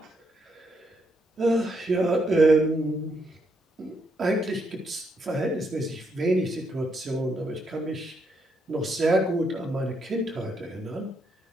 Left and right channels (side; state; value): both; normal; correlation 0.77